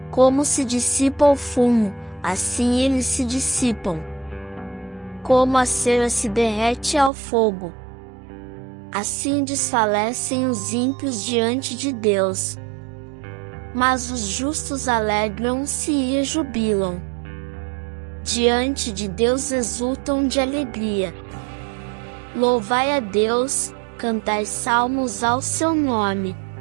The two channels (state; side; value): drops out; left; at 7.1 s